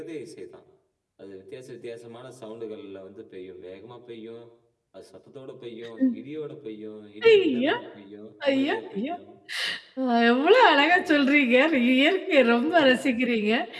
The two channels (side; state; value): both; identical; correlation 1.00